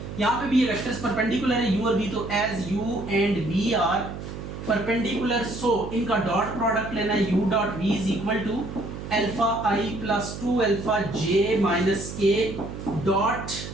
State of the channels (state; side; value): noise; right; hum, 9 dB below the sound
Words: यहाँ पे भी ये वेक्टर्स परपेंडिकुलर है u और v, तो as u and v are perpendicular, so इनका डॉट प्रोडक्ट लेना है, u dot v is equal to alpha i plus 2 alpha j minus k dot